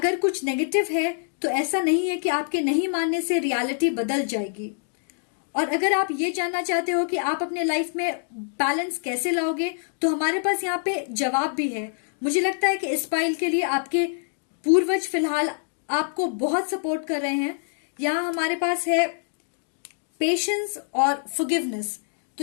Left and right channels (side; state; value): right; silent; digital silence